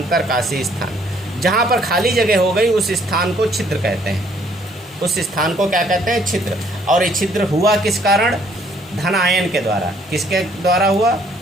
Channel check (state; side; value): normal; both; correlation 0.63